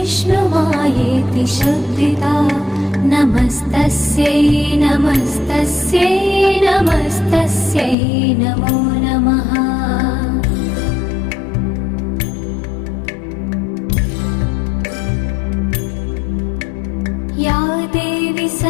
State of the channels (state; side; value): drops out; right; at 8.0 s